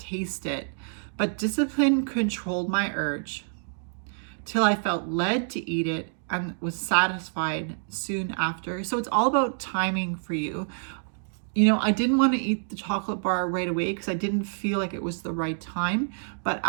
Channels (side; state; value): left; silent; digital silence